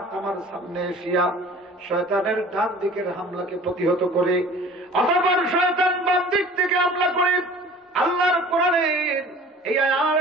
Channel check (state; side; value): normal; both; correlation 0.46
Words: আমার সামনে এসিয়া শয়তানের ডান দিকের হামলাকে প্রতিহত করে। অতঃপর শয়তান বাম দিক থেকে হামলা করে আল্লাহর কোরআনের এই আর